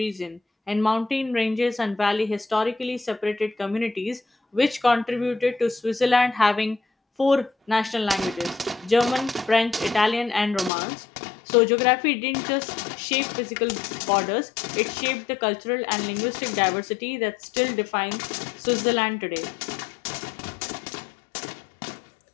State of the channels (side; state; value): right; drops out; at 10.7 s